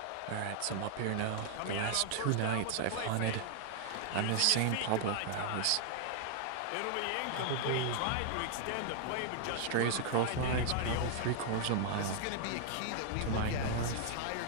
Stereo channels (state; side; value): different; both; correlation 0.00